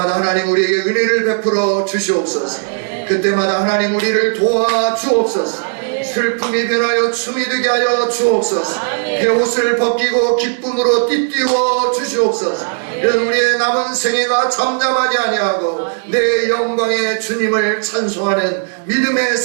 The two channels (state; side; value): silent; left; digital silence